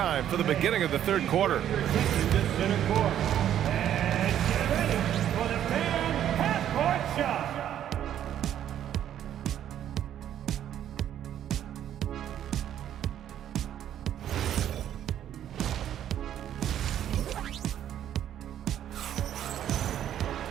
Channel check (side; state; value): left; quieter; 10.7 dB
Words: for the beginning of the third quarter.